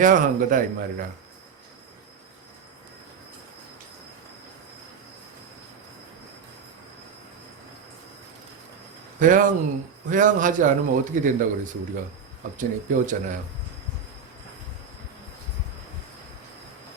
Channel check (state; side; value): quieter; left; 6.2 dB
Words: 거다 이 말이라. 회양하지 않으면 어떻게 된다고 그래서 우리가 앞전에 배웠잖아요.